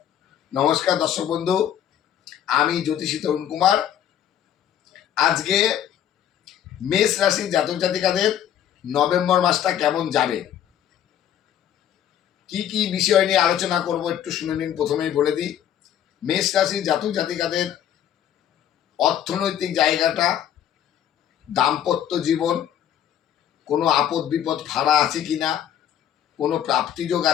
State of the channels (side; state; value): right; quieter; 10.3 dB